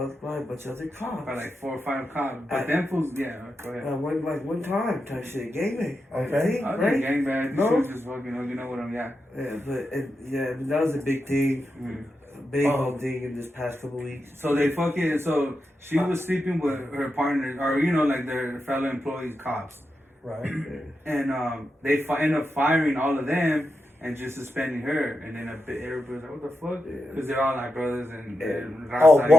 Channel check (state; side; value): normal; both; correlation 0.88